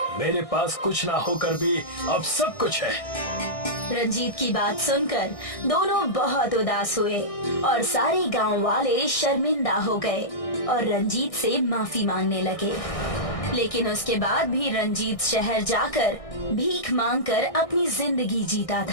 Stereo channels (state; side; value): late; right; 1.6 ms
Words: मेरे पास कुछ ना होकर भी अब सब कुछ है। रंजीत की बात सुनकर दोनों बहुत उदास हुए और सारे गांव वाले शर्मिंदा हो गए और रंजीत से माफी मांगने लगे। लेकिन उसके बाद भी रंजीत शहर जाकर भीख मांगकर अपनी जिंदगी जीता